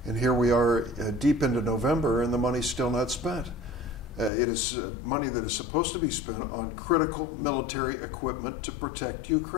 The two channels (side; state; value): right; drops out; at 4.3 s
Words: And here we are deep into November and the money's still not spent. It is money that is supposed to be spent on critical military equipment to protect